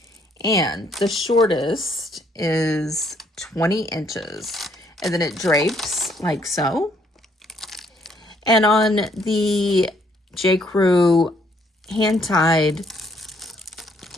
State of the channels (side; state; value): both; normal; correlation 0.67